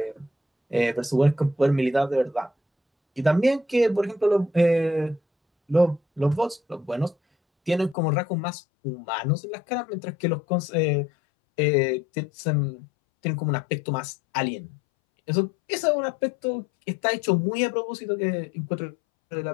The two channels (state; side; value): drops out; right; at 8.0 s